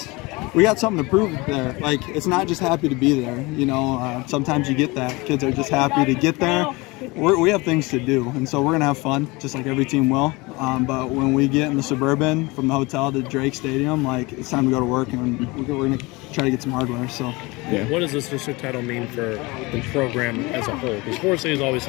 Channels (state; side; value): quieter; right; 24.2 dB